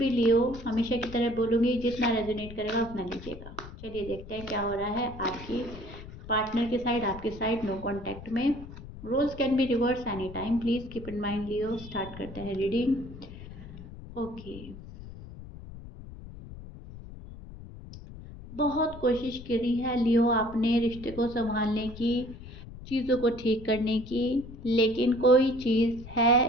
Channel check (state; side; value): noise; left; rumble, 14 dB below the sound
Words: लियो हमेशा की तरह बोलूँगी, जितना रेजोनेट करेगा उतना लीजिएगा। चलिए देखते हैं क्या हो रहा है आपकी पार्टनर के साइड, आपके साइड नो कॉन्टैक्ट में। Roles can be reverse any time, please keep in mind Leo. Start करते हैं रीडिंग। ओके, बहुत कोशिश करी है लियो आपने रिश्ते को संभालने की, चीज़ों को ठीक करने की, लेकिन कोई चीज़